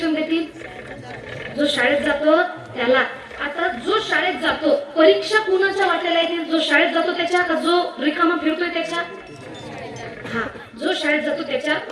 देतील? जो शाळेत जातो त्याला. आता जो शाळेत जातो, परीक्षा कुणाच्या वाट्याला येतील? जो शाळेत जातो त्याच्या का जो रिकामा फिरतोय त्याच्या? हा, जो शाळेत जातो त्याच्या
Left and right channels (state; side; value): identical; both; correlation 1.00